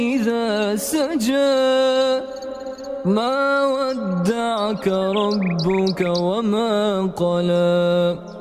إذا سجى ما ودعك ربك وما قلى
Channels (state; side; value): identical; both; correlation 1.00